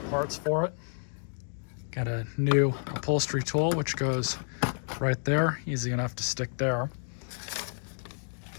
Parts for it. Got a new upholstery tool, which goes right there, easy enough to stick there.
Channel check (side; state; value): right; silent; 58 dB below the other